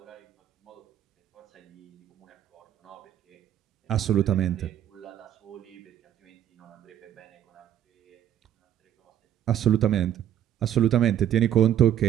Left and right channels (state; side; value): quieter; left; 11.0 dB